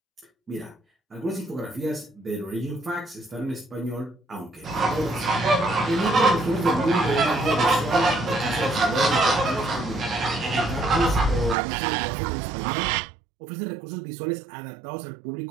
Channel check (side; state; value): left; drops out; at 11.6 s